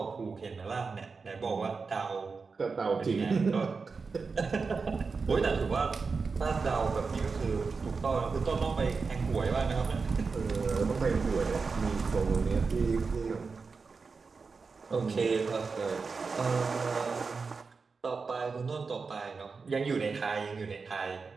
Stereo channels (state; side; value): quieter; left; 4.7 dB